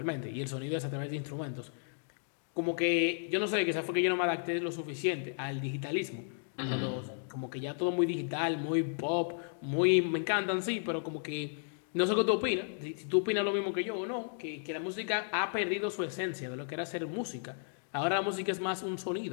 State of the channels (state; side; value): silent; right; digital silence